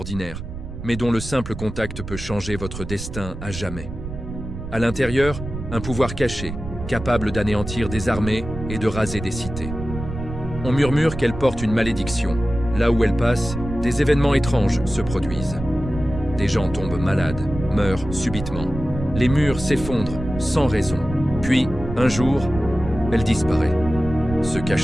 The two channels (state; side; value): noise; right; rumble, 9 dB below the sound